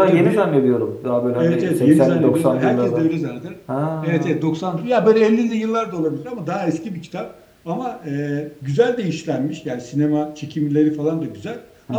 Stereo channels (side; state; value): both; identical; correlation 1.00